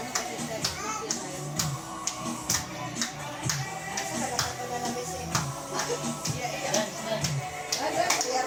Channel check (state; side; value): identical; both; correlation 1.00